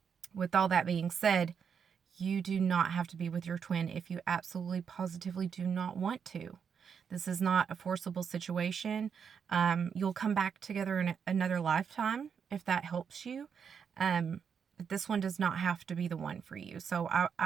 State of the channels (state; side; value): quieter; left; 6.9 dB